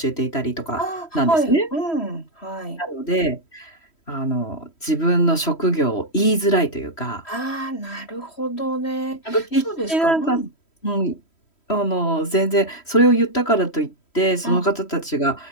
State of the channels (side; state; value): right; late; 3.1 ms